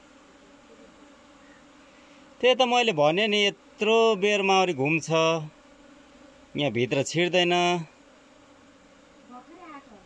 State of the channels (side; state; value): both; identical; correlation 1.00